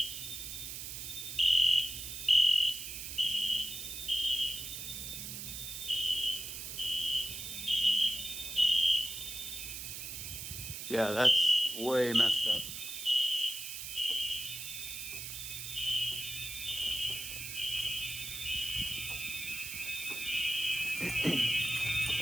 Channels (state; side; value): noise; right; hiss, 7 dB below the sound